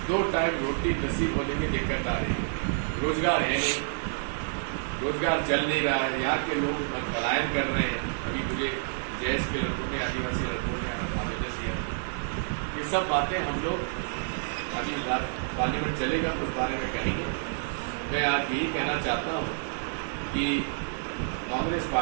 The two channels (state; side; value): silent; left; digital silence